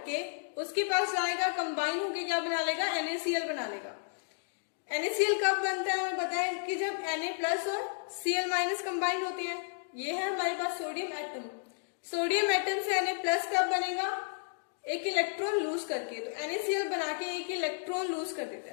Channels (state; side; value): silent; right; digital silence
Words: उसके पास जाएगा, कंबाइन होके क्या बना लेगा? NaCl बना लेगा। NaCl कब बनता है? हमें पता है कि जब Na+ और Cl- कंबाइन होते हैं। ये है हमारे पास सोडियम एटम। सोडियम एटम से Na+ कब बनेगा? एक इलेक्ट्रॉन लूज करके, तो NaCl बना के एक इलेक्ट्रॉन लूज कर देता